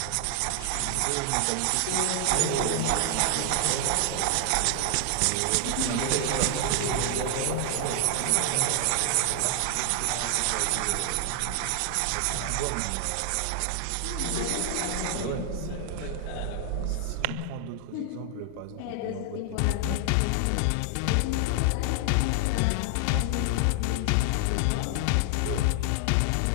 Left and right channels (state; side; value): different; both; correlation 0.00